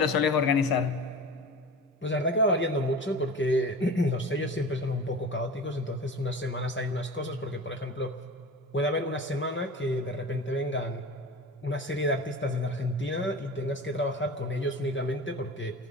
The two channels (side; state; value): both; normal; correlation 0.34